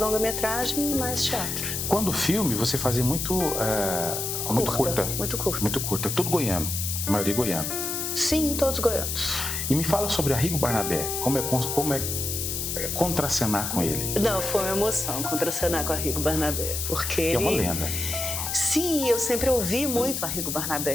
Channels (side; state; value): left; noise; hiss, 2 dB below the sound